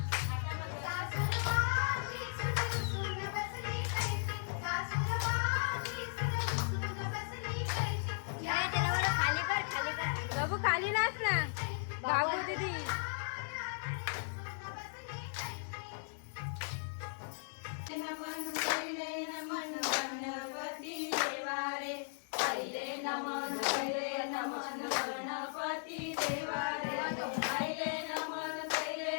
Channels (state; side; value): silent; right; digital silence